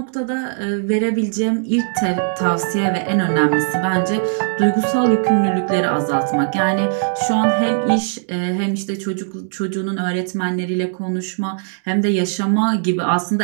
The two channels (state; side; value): silent; left; digital silence